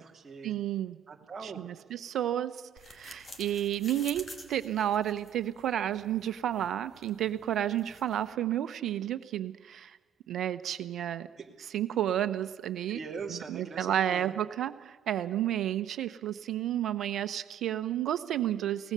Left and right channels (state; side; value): quieter; left; 10.7 dB